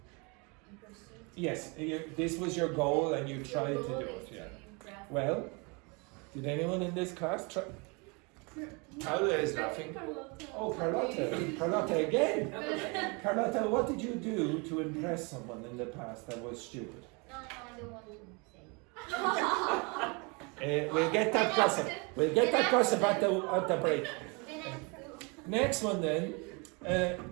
In pursuit? Yes, this was your goal and you Your tried to goal do is it. to Yeah. impress. Well, did anyone in this class try? Paula is laughing. Oh, Carlotta. Carlotta again. Carlotta, what did you do to impress someone in the past that was stupid? No, I don't want to say. We'll get that gossip. We'll get that gossip at the break. Then I do. Next one then.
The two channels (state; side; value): quieter; left; 30.5 dB